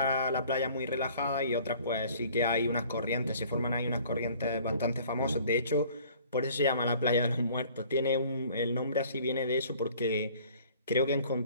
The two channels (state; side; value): inverted; both; correlation -0.53